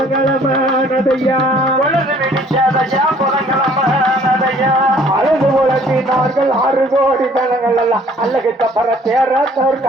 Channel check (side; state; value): both; normal; correlation 0.57